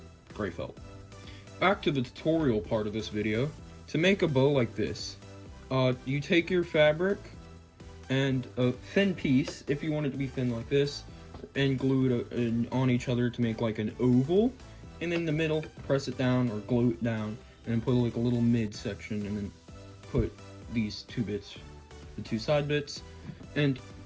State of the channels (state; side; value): identical; both; correlation 1.00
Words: gray felt. Back to the tutorial part of this video. To make a bow like this, you take your fabric and a thin piece, if you want it to be thin like this, and glue it on each other to make like an oval, and in the middle, press it down or glue it down, and then put like a little mid section, and then put these two bits, the two side bits. And